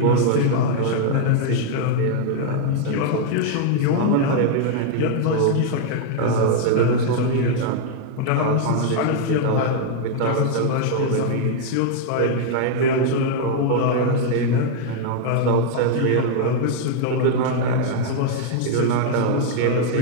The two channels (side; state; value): both; different; correlation 0.00